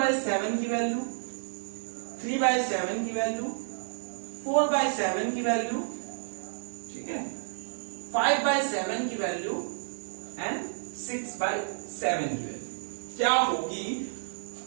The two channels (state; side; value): silent; left; digital silence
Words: की वैल्यू, 3/7 की वैल्यू, 4/7 की वैल्यू, ठीक है, 5/7 की वैल्यू एंड 6/7 की वैल्यू क्या होगी